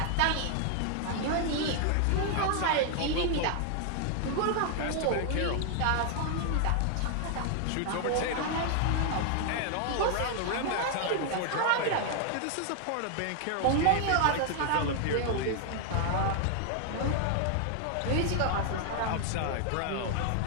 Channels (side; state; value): both; different; correlation 0.00